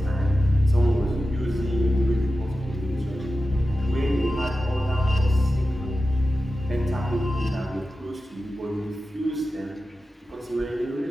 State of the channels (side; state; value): both; normal; correlation 0.93